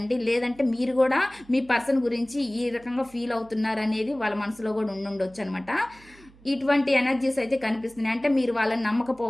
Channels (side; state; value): right; noise; hum, 25 dB below the sound